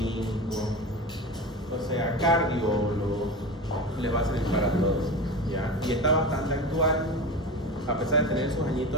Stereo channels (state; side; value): normal; both; correlation 0.28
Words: o sea, cardiólogo, les va a servir para todos, ¿ya? Y está bastante actual, a pesar de tener sus